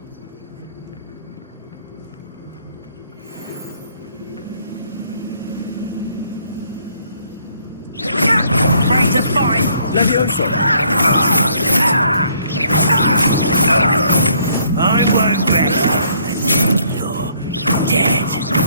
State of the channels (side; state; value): both; inverted; correlation -0.66